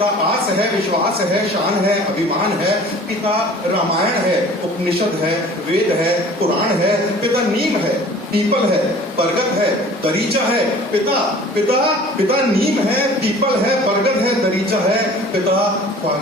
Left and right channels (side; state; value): both; normal; correlation 0.47